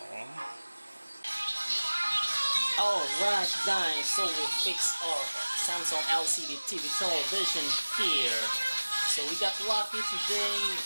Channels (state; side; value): inverted; both; correlation -1.00